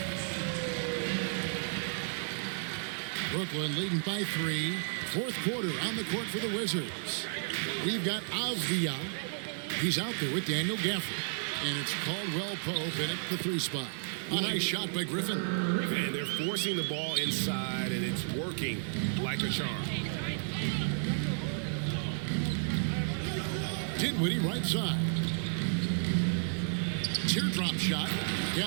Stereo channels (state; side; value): silent; left; digital silence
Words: Brooklyn leading by 3. Fourth quarter on the court for the Wizards. We've got Avdia. He's out there with Daniel Gafford. And it's Caldwell Pope in at the 3 spot. A nice shot by Griffin. And they're forcing the ball inside, and it's working like a charm. Dinwiddie right side. Teardrop shot.